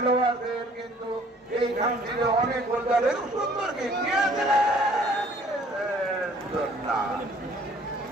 কিন্তু এইখান থেকে অনেক গোলদারের সুন্দর কিক নিয়েছিলেন,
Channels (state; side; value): normal; both; correlation 0.56